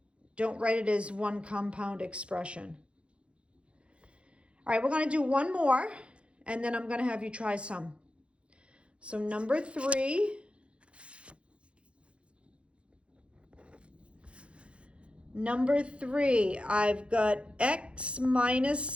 Don't write it as one compound expression. All right, we're going to do one more, and then I'm going to have you try some. So number 3. Number 3, I've got x minus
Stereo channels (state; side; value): late; left; 0.059 ms